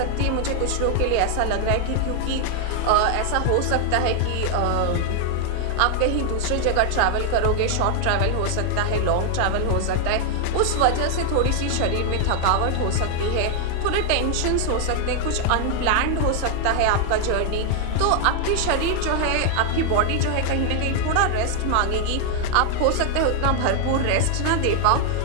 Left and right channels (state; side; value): different; both; correlation 0.00